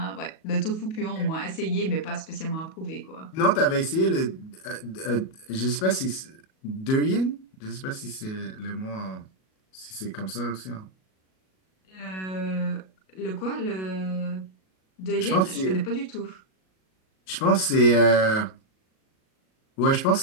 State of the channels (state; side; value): late; right; 37 ms